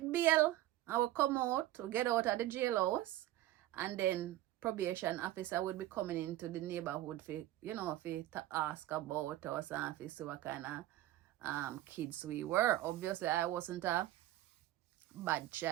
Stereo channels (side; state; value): left; quieter; 15.0 dB